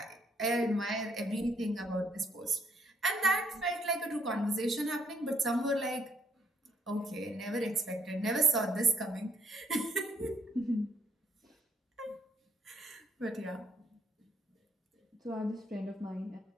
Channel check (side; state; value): both; normal; correlation 0.71